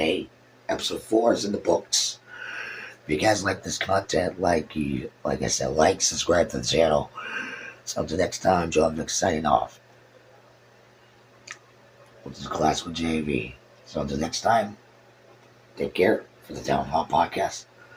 Episode 4 is in the books. If you guys like this content, like I said, subscribe to the channel. So until next time, Joe Vic signing off. This is Classical JV. So until next time, take care for the Town Hall Podcast.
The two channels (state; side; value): identical; both; correlation 1.00